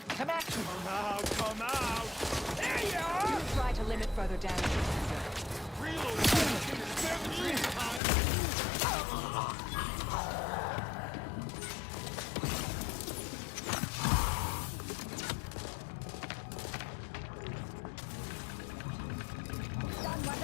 Command. Come out, come out! There you are! Try to limit further damage, Commander. Reload! 17 times! Stun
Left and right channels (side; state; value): right; drops out; at 8.0 s